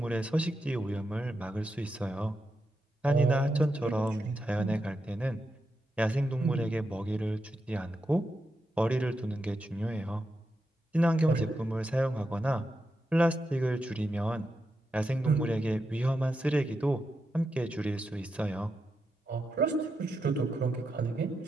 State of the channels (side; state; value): both; normal; correlation 0.86